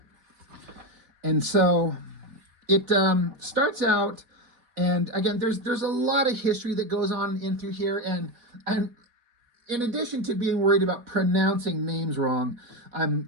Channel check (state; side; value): late; left; 4.2 ms